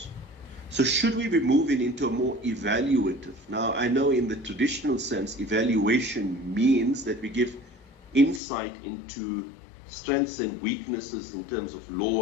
So should we be moving into a more evaluative? Now, I know in the traditional sense, evaluation means that we give insight into strengths and weaknesses in terms of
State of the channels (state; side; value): drops out; right; at 8.4 s